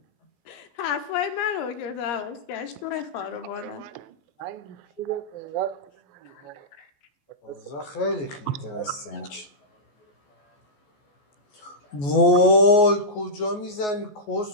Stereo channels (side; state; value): right; late; 14 ms